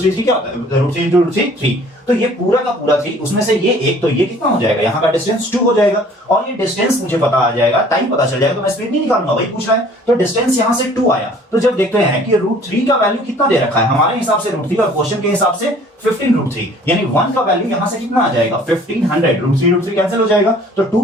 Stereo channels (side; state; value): both; normal; correlation 0.53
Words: 3 क्या होता है, √3 × 3 3, तो ये पूरा का पूरा 3, उसमें से ये एक, तो ये कितना हो जाएगा, यहाँ का डिस्टेंस 2 हो जाएगा, और ये डिस्टेंस मुझे पता आ जाएगा, टाइम पता चल जाएगा, तो मैं स्पीड नहीं निकालूंगा, वही पूछ रहा है। तो डिस्टेंस यहाँ से 2 आया, तो जब देखते हैं कि √3 का वैल्यू कितना दे रखा है, हमारे हिसाब से √3 और क्वेश्चन के हिसाब से 15√3, यानी 1 का वैल्यू यहां से कितना आ जाएगा 1500, √3 कैंसिल हो जाएगा, तो 2